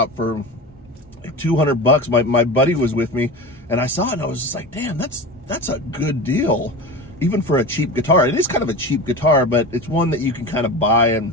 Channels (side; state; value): both; normal; correlation 0.29